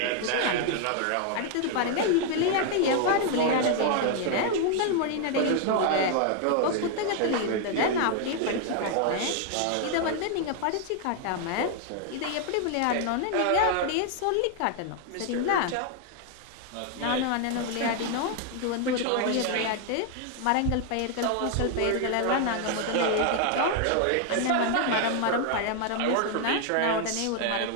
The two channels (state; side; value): different; both; correlation 0.00